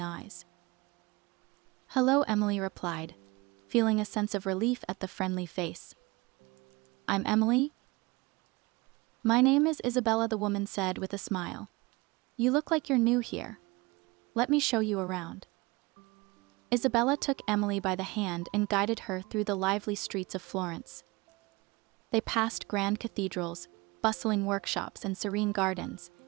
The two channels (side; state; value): left; quieter; 24.1 dB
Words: eyes. "Hello," Emily replied, feeling a sense of relief at the friendly face. "I'm Emily." "My name is Isabella," the woman said with a smile. "You look like you're new here. Let me show you around." Isabella took Emily by the hand and guided her through the lively streets of Florence. They passed grand cathedrals, bustling workshops, and serene gardens,